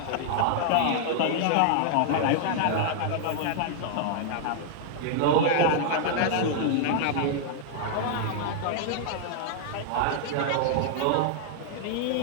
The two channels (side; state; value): both; different; correlation -0.01